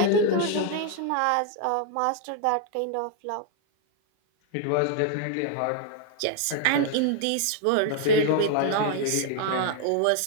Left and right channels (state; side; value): different; both; correlation 0.00